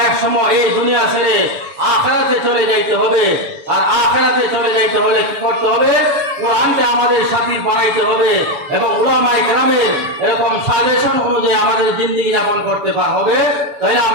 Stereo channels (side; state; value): left; late; 7.1 ms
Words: এক সময় এই দুনিয়া ছেড়ে আখিরাতে চলে যাইতে হবে। আর আখিরাতে চলে যাইতে হলে কি করতে হবে? কোরআনকে আমাদের সাথী বানাইতে হবে এবং উলামায়ে কেরামের এরকম সাজেশন অনুযায়ী আমাদের জিন্দেগি যাপন করতে হবে। তাহলে